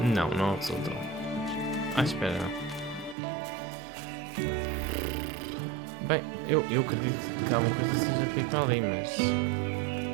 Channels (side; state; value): left; drops out; at 3.2 s